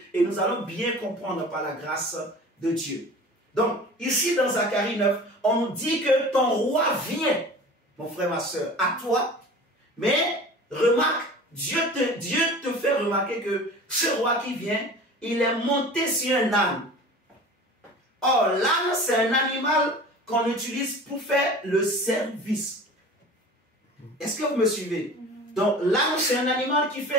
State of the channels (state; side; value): normal; both; correlation 0.39